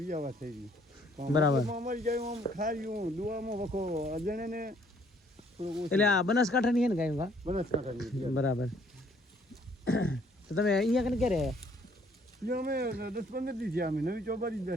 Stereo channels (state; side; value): normal; both; correlation 0.63